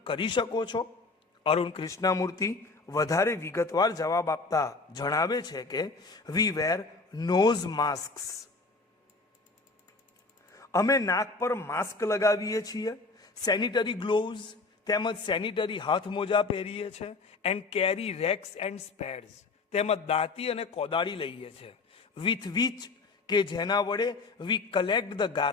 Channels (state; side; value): quieter; right; 3.8 dB